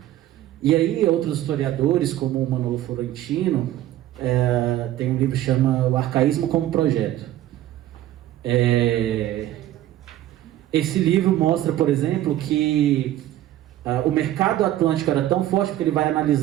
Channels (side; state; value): left; quieter; 13.5 dB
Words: E aí outros historiadores, como o Manolo Florentino, tem um livro que chama O Arcaísmo como Projeto. Esse livro mostra, por exemplo, que o mercado atlântico era tão forte, porque ele vai